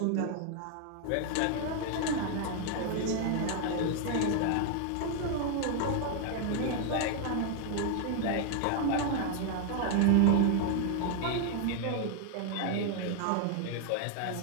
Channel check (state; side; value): different; both; correlation 0.00